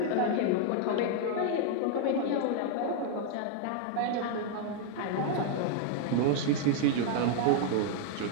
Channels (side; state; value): both; different; correlation 0.00